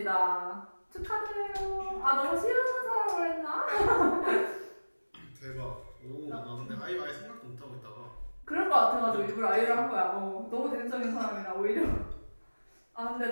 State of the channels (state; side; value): inverted; both; correlation -1.00